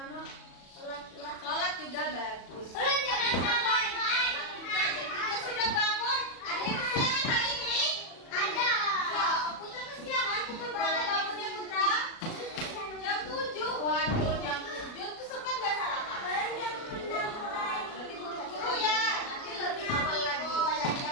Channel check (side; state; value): right; late; 37 ms